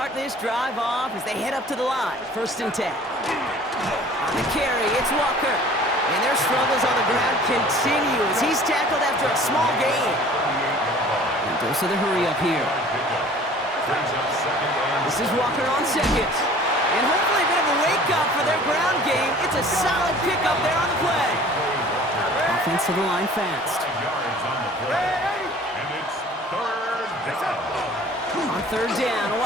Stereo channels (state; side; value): normal; both; correlation 0.48